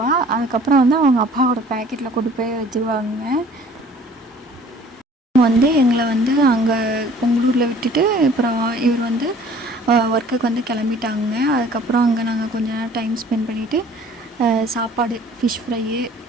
அதுக்கப்புறம் வந்து அவங்க அப்பாவோட பேக்கெட்டில் கொண்டு போய் வச்சுருவாங்க. வந்து எங்களை வந்து அங்கே பொங்கலூரில் விட்டுட்டு அப்புறம் இவர் வந்து ஒர்க்குக்கு வந்து கிளம்பிட்டாங்க. அதுக்கப்புறம் அங்கே நாங்கள் கொஞ்ச நேரம் டைம் ஸ்பெண்ட் பண்ணிவிட்டு சாப்பாடு ஃபிஷ் ஃப்ரையு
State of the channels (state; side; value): normal; both; correlation 0.51